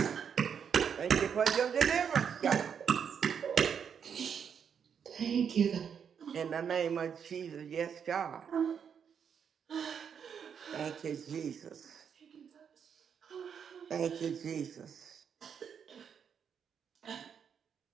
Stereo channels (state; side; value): quieter; left; 7.4 dB